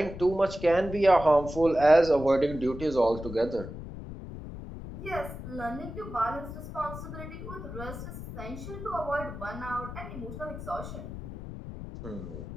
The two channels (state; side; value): noise; left; rumble, 10 dB below the sound